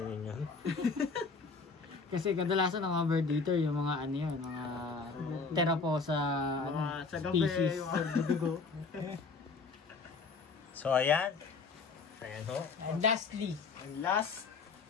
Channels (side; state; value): right; quieter; 4.5 dB